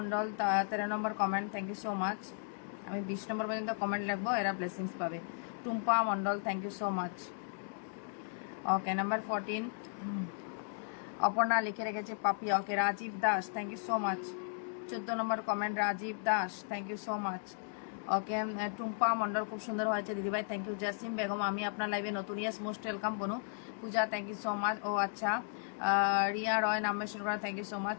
13 number comment. Thank you so much. আমি 20 নম্বর পর্যন্ত কমেন্ট লিখবো এরা ব্লেসিংস পাবে. Tumpa Mondal thank you so much. Okay number 14 Aparna লিখে রেখেছে Papiya. Okay Rajib Das thank you so much. 14 number comment Rajib Das thank you so much. Okay Tumpa Mondal খুব সুন্দর হয়েছে দিদিভাই থ্যাংক ইউ. জাসিম বেগম আমি আপনার লাইভে নতুন. ইয়েস মোস্ট ওয়েলকাম বনু. Puja thank you so much. ও আচ্ছা, রিয়া রয় নাম মেনশন করা, thank you so much.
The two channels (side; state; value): right; silent; digital silence